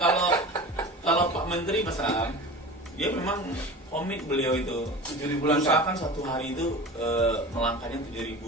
kalau Pak Menteri Mas Am, dia memang komit beliau itu 7.000 langkah. usahakan satu hari itu melangkahnya 7.000,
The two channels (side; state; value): both; normal; correlation 0.34